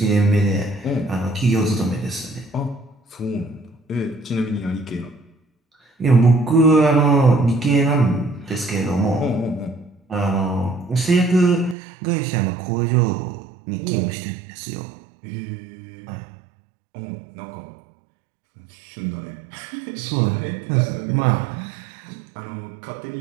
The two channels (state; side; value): drops out; left; at 11.8 s